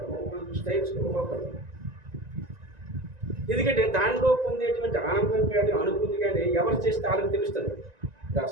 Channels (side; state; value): left; late; 1.9 ms